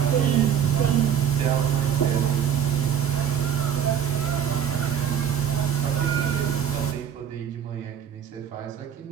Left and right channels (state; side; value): quieter; left; 8.7 dB